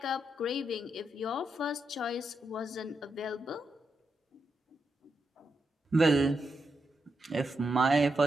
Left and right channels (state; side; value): normal; both; correlation 0.84